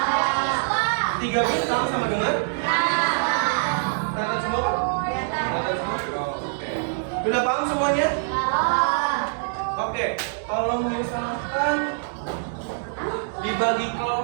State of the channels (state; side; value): silent; left; 62 dB below the other